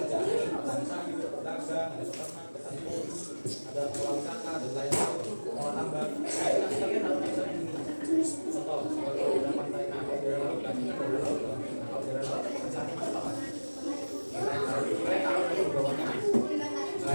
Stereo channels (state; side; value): inverted; both; correlation -1.00